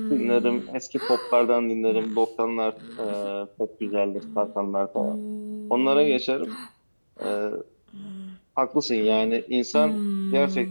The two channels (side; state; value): both; inverted; correlation -1.00